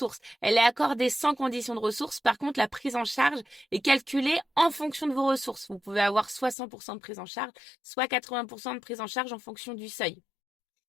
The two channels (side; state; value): right; drops out; at 6.6 s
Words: Elle est accordée sans condition de ressources. Par contre, la prise en charge est calculée en fonction de vos ressources. Vous pouvez avoir soit 100% de prise en charge, soit 80% de prise en charge en fonction du seuil.